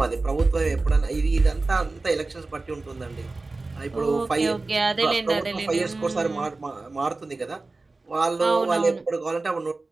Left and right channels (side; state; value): left; quieter; 3.4 dB